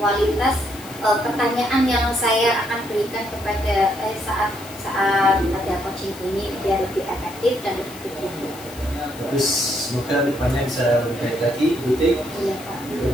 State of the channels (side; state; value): left; noise; hiss, 17 dB below the sound